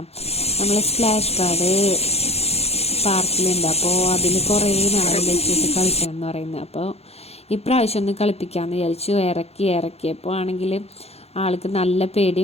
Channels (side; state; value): right; late; 0.30 ms